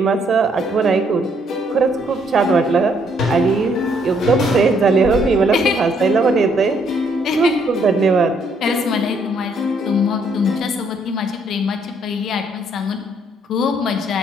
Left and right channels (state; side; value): normal; both; correlation 0.69